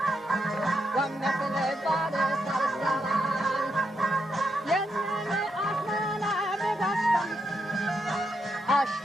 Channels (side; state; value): both; normal; correlation 0.81